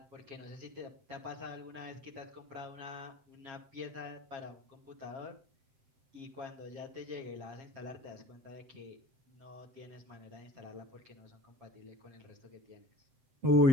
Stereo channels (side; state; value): left; late; 7.4 ms